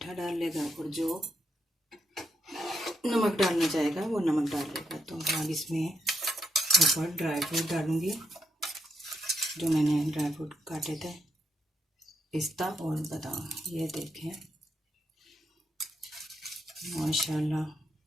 डाल लेगा, और जो नमक डालना चाहेगा वो नमक डाल लेगा। तो अब इसमें ऊपर ड्राई फ्रूट डालूँगी, जो मैंने ड्राई फ्रूट काटे थे, पिस्ता और बादाम। ये देखें माशाल्लाह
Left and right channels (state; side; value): normal; both; correlation 0.80